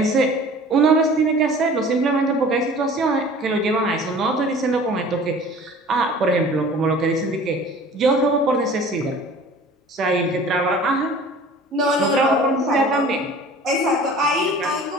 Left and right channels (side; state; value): both; normal; correlation 0.45